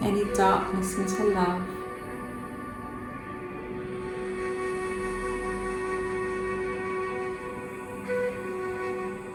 any darkness into love.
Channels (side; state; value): both; identical; correlation 1.00